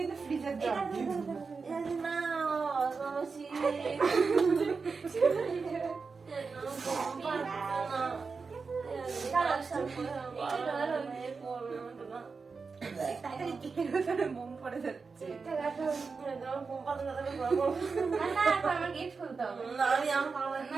মোম পড়ে যাচ্ছে। আমার গেট খুলতে হবে।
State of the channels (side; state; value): left; quieter; 4.8 dB